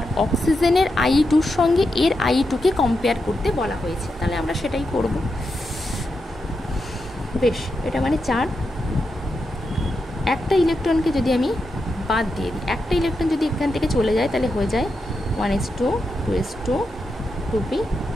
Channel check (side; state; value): both; normal; correlation 0.86